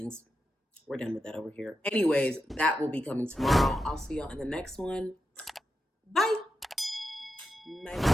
We're done with that over here. Anyways, that will be coming tomorrow. I'll see y'all in the next one. Bye. Bye.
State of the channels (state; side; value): normal; both; correlation 0.88